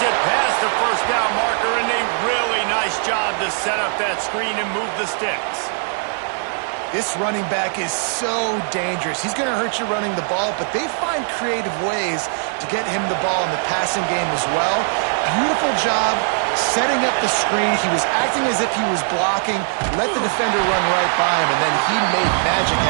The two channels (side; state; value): left; silent; 66 dB below the other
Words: it past the 1st down marker, and a really nice job to set up that screen and move the sticks. This running back is so dangerous. He's going to hurt you running the ball, but they find creative ways to get him the ball in the passing game as well. Beautiful job setting up the screen. He was acting as if he was blocking, let the defender run right by him, and then he made magic